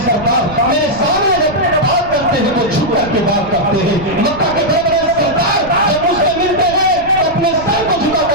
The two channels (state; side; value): noise; right; rumble, 15 dB below the sound